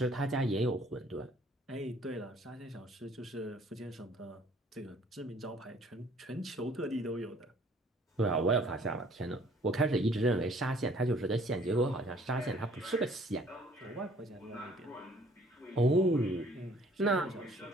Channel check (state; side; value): normal; both; correlation 0.57